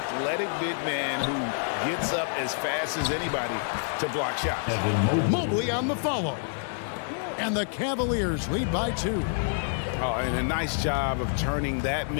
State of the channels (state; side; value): silent; right; 60 dB below the other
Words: big man who gets up as fast as anybody to block shots. Mobley on the follow. And the Cavaliers lead by 2. Oh, and a nice job of turning that